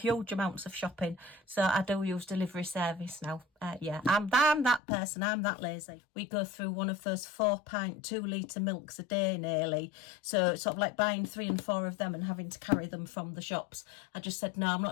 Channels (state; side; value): drops out; right; at 4.8 s